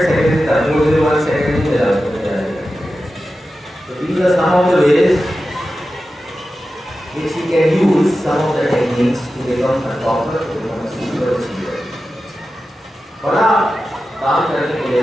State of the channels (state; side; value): normal; both; correlation 0.93